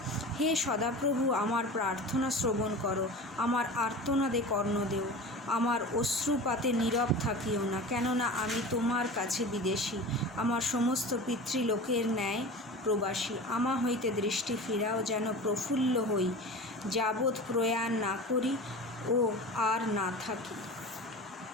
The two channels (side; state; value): both; normal; correlation 0.34